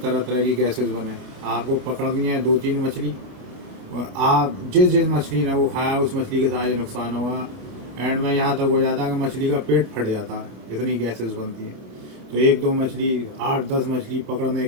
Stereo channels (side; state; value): left; late; 28 ms